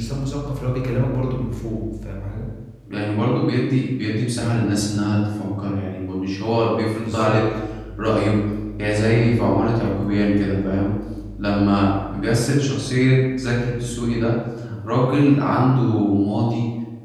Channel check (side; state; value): both; identical; correlation 1.00